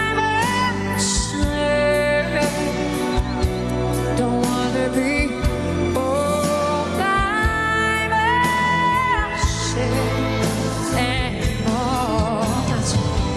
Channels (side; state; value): both; identical; correlation 1.00